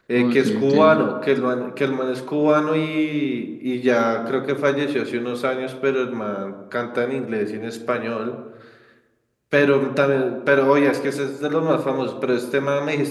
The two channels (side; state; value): both; identical; correlation 1.00